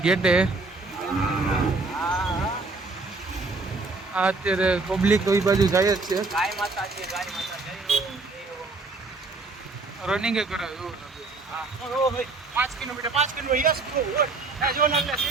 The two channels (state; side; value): quieter; left; 3.6 dB